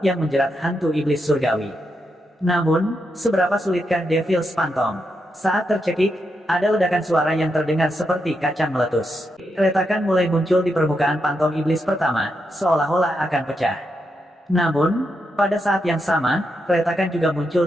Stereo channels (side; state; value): both; normal; correlation 0.83